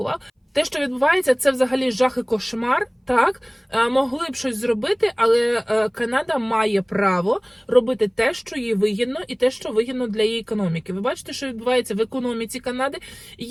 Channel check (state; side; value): identical; both; correlation 1.00